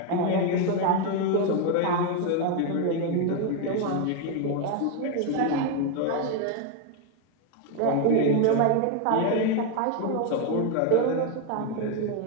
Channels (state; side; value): different; both; correlation 0.01